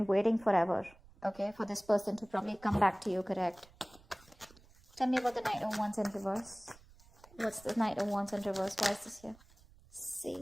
waiting forever, okay, for this person to probably come back to you, correct? Tell me about the Knight of Wands in reverse. What's the Knight of Wands in reverse? Why is this here? See,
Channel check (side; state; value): right; noise; rumble, 25 dB below the sound